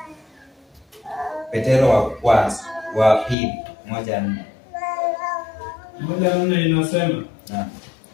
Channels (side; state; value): right; drops out; at 3.4 s